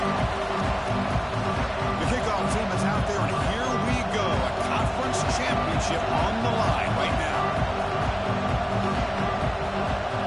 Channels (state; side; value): identical; both; correlation 1.00